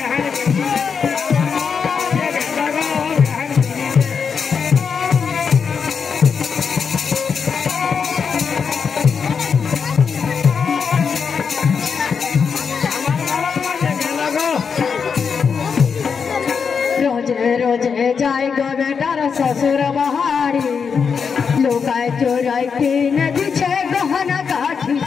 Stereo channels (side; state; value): right; quieter; 6.1 dB